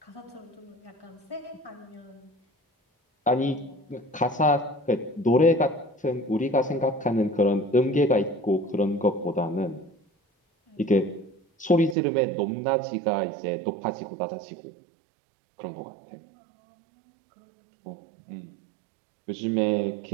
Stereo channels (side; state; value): left; drops out; at 12.0 s